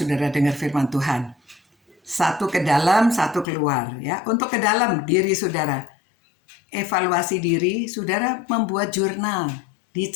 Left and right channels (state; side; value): drops out; right; at 3.5 s